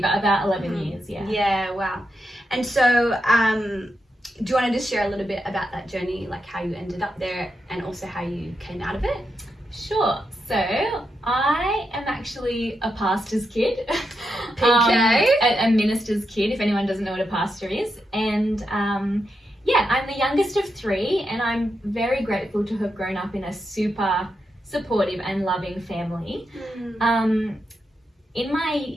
about 11 years, Yeah, wow. And so do you want to just share a little bit about that journey, like how you ended up there and also how you came out of it? Sure. So I am actually a pastor's kid. PK? A minister's kid, if anyone doesn't know what a pastor is. And I'm the youngest of 3, and I'm very grateful to have grown up in a super supportive and loving family. In my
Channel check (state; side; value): normal; both; correlation 0.85